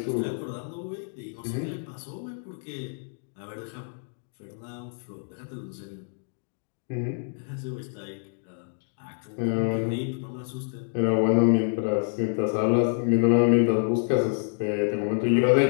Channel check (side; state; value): right; silent; digital silence